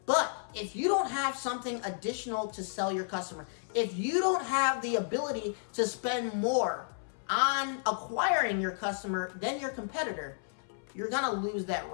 But if you don't have something additional to sell your customer, if you don't have the ability to spend more on acquiring your customer than your competitor, you're gonna lose that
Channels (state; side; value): silent; right; 56 dB below the other